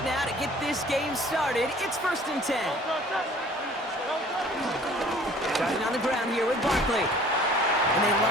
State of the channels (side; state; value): both; normal; correlation 0.51